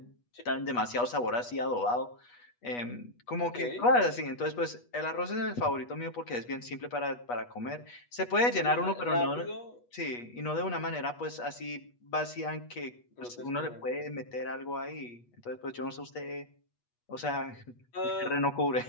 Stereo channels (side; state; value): right; late; 8.3 ms